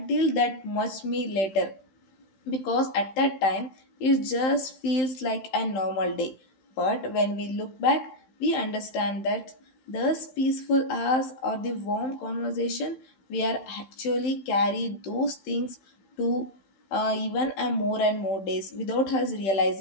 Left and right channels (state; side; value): late; right; 15 ms